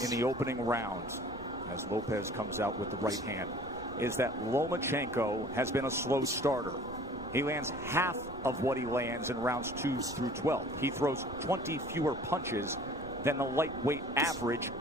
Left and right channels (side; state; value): right; noise; rumble, 18 dB below the sound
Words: in the opening round, as Lopez comes out with the right hand, is that Lomachenko has been a slow starter. He lands half of what he lands in rounds 2 through 12. He throws 20 fewer punches than the lightweight average